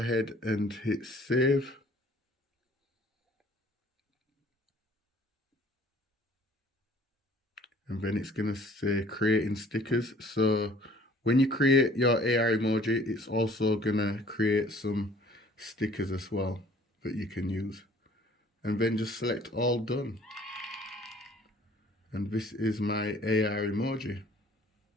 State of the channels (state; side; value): normal; both; correlation 0.54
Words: and hit save. And then it's gonna say creating stickers. So when you create your AR emoji, it's also gonna create some stickers as well that you can use. And then just select all done. And this is my AR emoji.